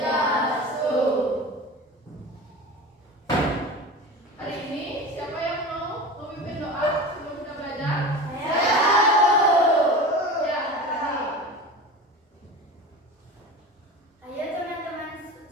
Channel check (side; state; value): both; normal; correlation 0.32